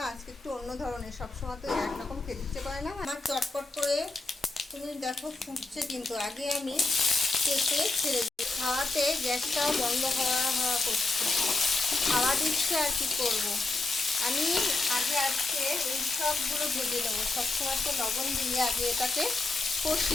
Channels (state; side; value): quieter; right; 3.3 dB